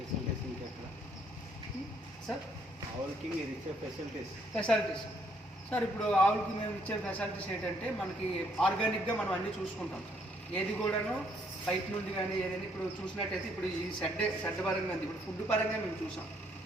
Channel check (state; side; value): normal; both; correlation 0.69